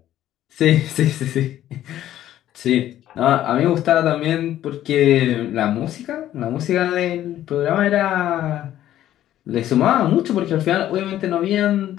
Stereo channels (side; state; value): right; quieter; 12.6 dB